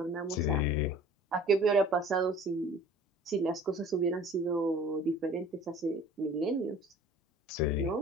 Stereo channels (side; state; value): both; normal; correlation 0.47